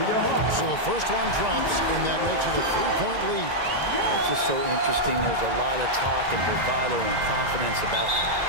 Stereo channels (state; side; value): late; left; 1.9 ms